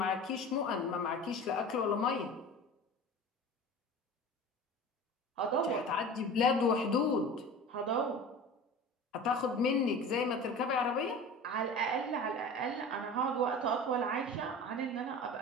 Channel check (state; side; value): normal; both; correlation 0.36